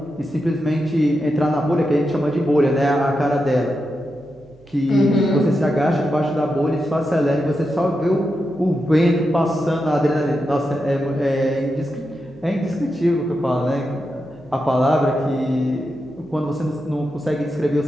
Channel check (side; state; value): right; noise; hum, 28 dB below the sound